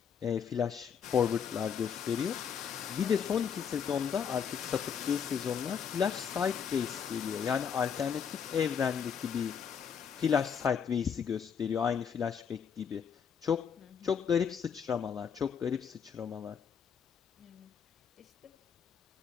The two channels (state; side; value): quieter; right; 7.2 dB